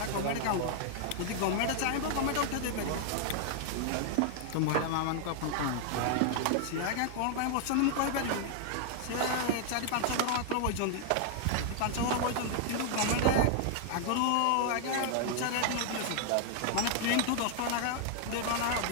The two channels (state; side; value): different; both; correlation 0.00